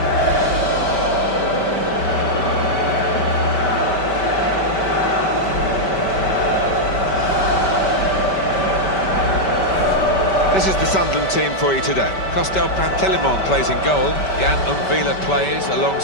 This is the Sunderland team for you today. Costel Pantelimon plays in goal. Jan Umvila plays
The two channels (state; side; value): late; right; 5.2 ms